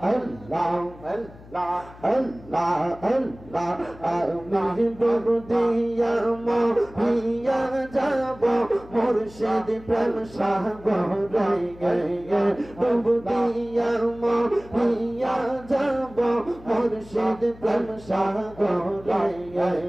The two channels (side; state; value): left; noise; hum, 20 dB below the sound